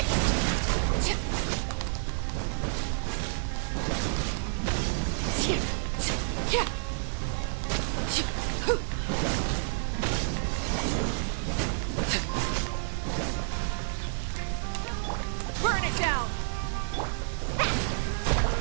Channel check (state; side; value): silent; left; digital silence